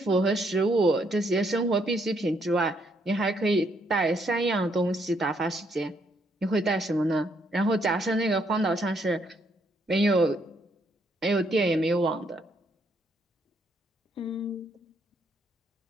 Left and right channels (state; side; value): normal; both; correlation 0.72